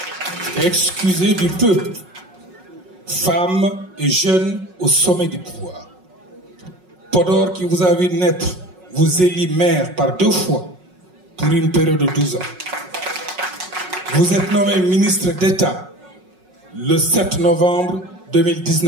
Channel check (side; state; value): left; late; 5.4 ms